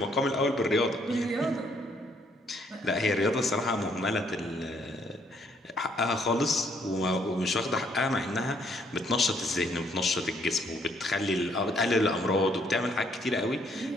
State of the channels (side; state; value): both; normal; correlation 0.68